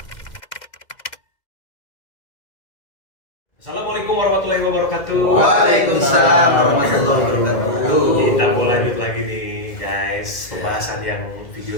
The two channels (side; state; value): right; late; 2.1 ms